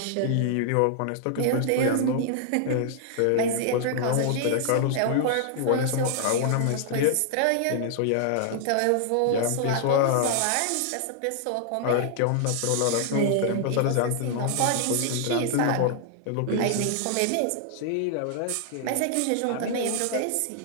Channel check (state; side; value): different; both; correlation 0.00